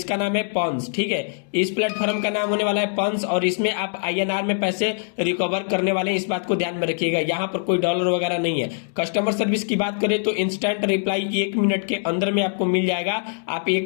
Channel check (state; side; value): silent; right; digital silence